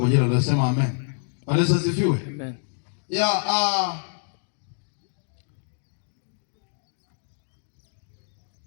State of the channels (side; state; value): right; silent; digital silence